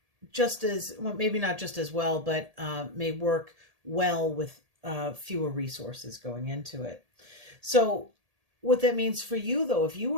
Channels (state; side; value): late; left; 1.8 ms